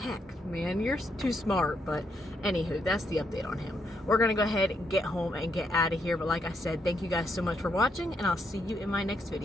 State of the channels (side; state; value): both; normal; correlation 0.78